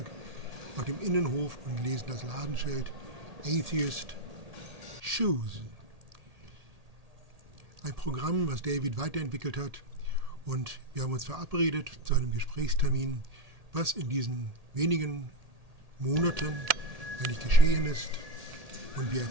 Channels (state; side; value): late; left; 1.8 ms